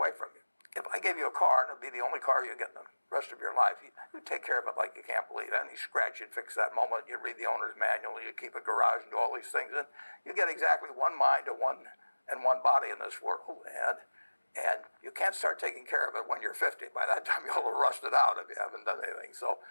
from you. If I gave you a car, and it'd be the only car you get in the rest of your life, you take care of it like you can't believe it. Any scratch, you'd fix that moment. You'd read the owner's manual. You keep a garage and do all these things, and you get exactly one mind and one body in this world. And you can't start taking care of it when you're 50. By that time, you'll have rusted out if you haven't done anything. So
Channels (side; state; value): both; inverted; correlation -1.00